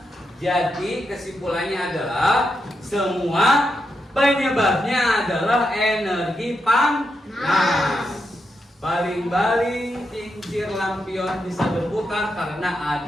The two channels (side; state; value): both; normal; correlation 0.84